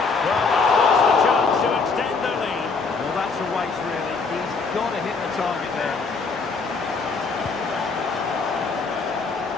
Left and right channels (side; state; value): right; quieter; 4.6 dB